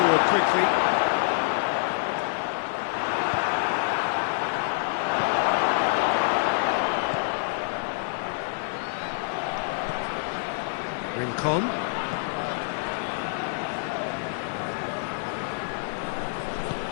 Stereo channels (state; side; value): silent; right; 60 dB below the other